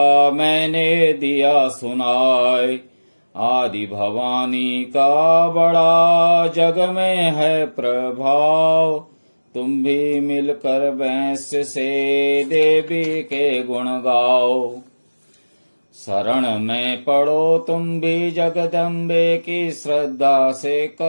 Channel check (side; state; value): both; inverted; correlation -1.00